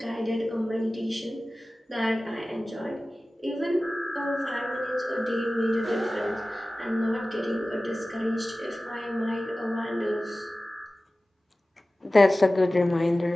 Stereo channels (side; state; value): both; normal; correlation 0.97